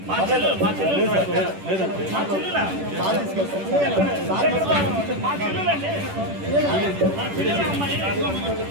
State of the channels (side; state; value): left; late; 10 ms